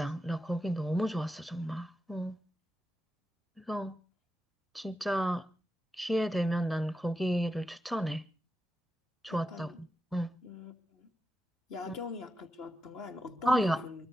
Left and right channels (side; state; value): both; normal; correlation 0.90